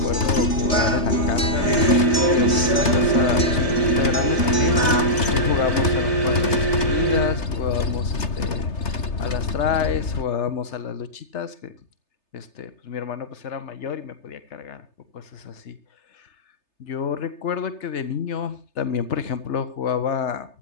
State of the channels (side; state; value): right; late; 3.3 ms